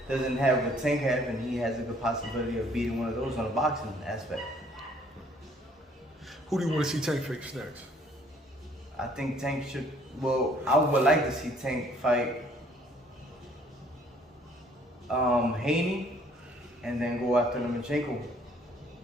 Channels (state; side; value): normal; both; correlation 0.60